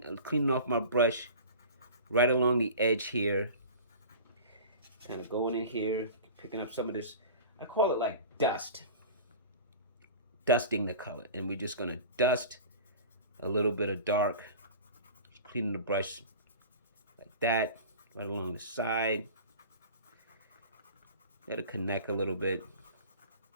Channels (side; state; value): both; inverted; correlation -0.37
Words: off my brush right along the edge here. Kind of going in here, picking up some of this. I call it like dust. Dusting the color. And we're just going to dust a little bit of dark. Just cleaning the brush like that, right along the side. Let it connect a little bit.